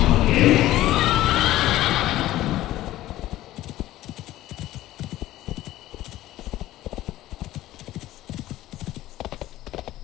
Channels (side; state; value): right; quieter; 15.1 dB